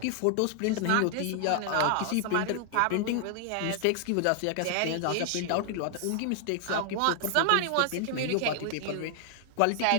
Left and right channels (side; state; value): both; different; correlation 0.00